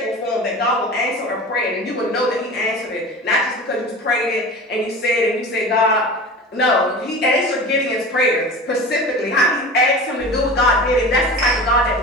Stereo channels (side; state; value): both; normal; correlation 0.34